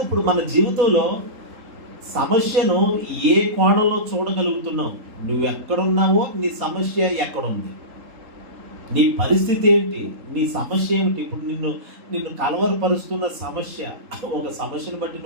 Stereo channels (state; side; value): late; left; 3.8 ms